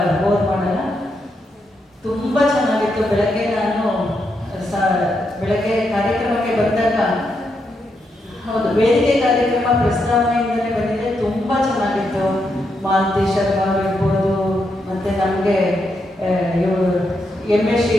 ಬೋರ್ ಮಾಡಲ್ಲ. ತುಂಬ ಚೆನ್ನಾಗಿತ್ತು. ಬೆಳಗ್ಗೆ ಕಾರ್ಯಕ್ರಮಕ್ಕೆ ಬಂದಾಗ, ಹೌದು, ವೇದಿಕೆ ಕಾರ್ಯಕ್ರಮ ಪ್ರಸ್ತಾವನೆಯಿಂದಲೇ ಬಂದಿದೆ. ತುಂಬ ಚೆನ್ನಾಗಿತ್ತು. ಮಾಲತಿ ಶರ್ಮಾ ಇರ್ಬೋದು, ಮತ್ತು ನಮಗೆ ಎಮ್ ಎಸ್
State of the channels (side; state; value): both; normal; correlation 0.81